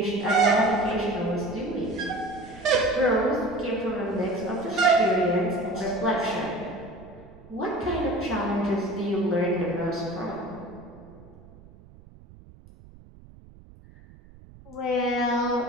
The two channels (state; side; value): noise; right; rumble, 22 dB below the sound